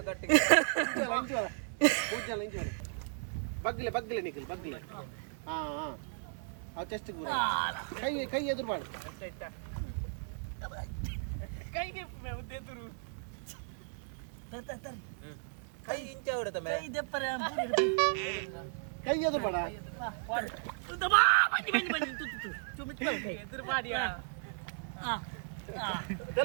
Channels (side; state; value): left; silent; 54 dB below the other